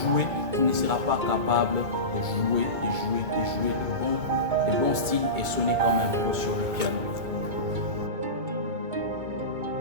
tu ne seras pas capable de jouer de bons styles et sonner comme un pro sur le piano.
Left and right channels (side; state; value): left; late; 2.2 ms